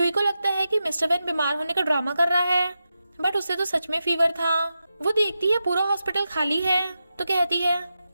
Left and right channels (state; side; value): inverted; both; correlation -0.89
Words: को लगता है कि मिस्टर वैन बीमार होने का ड्रामा कर रहा है, बट उसे तो सच में फीवर था। वो देखती है पूरा हॉस्पिटल खाली है तो कहती है